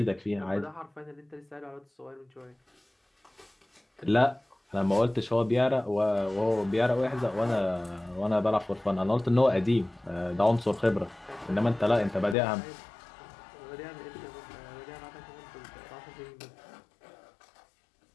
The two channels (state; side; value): drops out; right; at 12.4 s